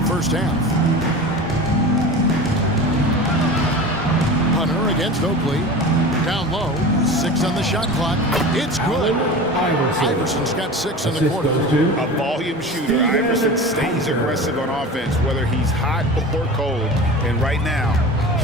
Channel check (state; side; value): normal; both; correlation 0.33